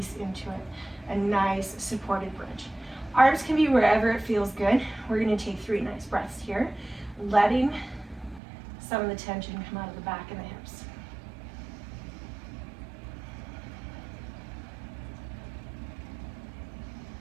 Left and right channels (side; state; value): left; drops out; at 8.4 s